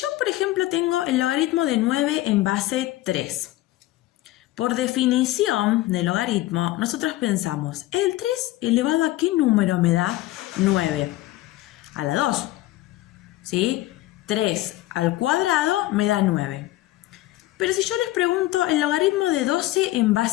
por ejemplo tengo el logaritmo de 9 en base 3. Por definición de logaritmo, nosotros pensamos, ¿el 3 elevado a qué número me da 9? A la 2, ¿sí? 3 al cuadrado me da 9. Pero si yo les pregunto el logaritmo de 12 en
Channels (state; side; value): quieter; right; 16.5 dB